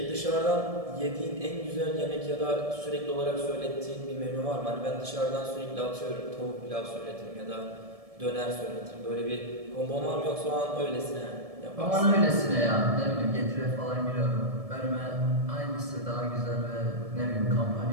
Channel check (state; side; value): late; left; 1.7 ms